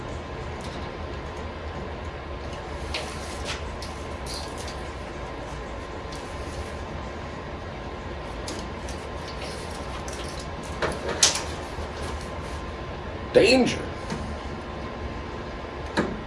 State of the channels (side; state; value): both; identical; correlation 1.00